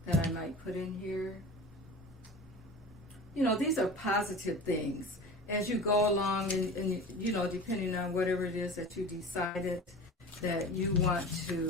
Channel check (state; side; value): normal; both; correlation 0.35